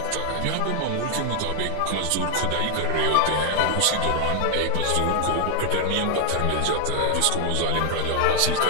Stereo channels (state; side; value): different; both; correlation 0.00